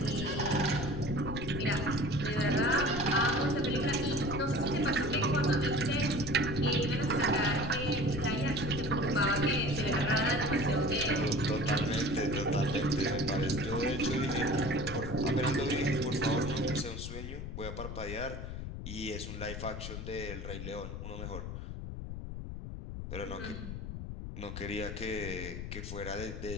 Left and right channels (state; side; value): noise; left; rumble, 7 dB below the sound